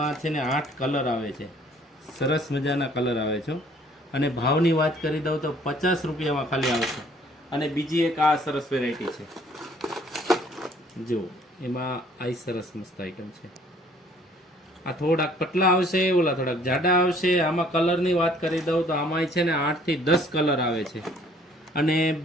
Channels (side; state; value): both; normal; correlation 0.58